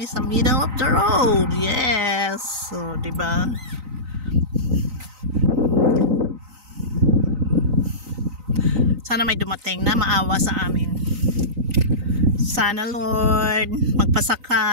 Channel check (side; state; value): left; late; 3.9 ms